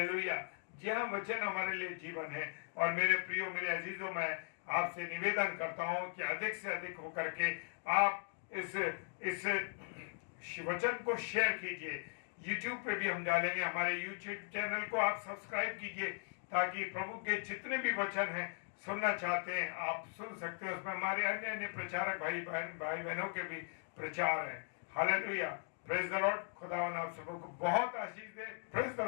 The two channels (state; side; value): silent; right; 52 dB below the other